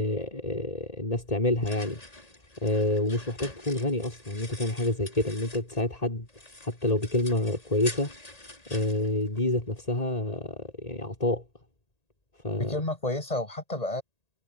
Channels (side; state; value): right; late; 1.8 ms